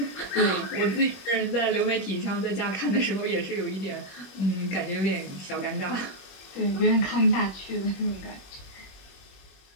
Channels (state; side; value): late; right; 21 ms